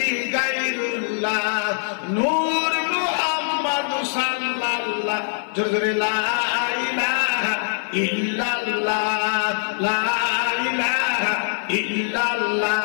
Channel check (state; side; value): silent; right; 59 dB below the other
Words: গায়রুল্লাহ, নূর মুহাম্মদ সাল্লাল্লাহ। জোরে জোরে, লা ইলাহা ইল্লাল্লাহ, লা ইলাহা ইল্লাল্লাহ।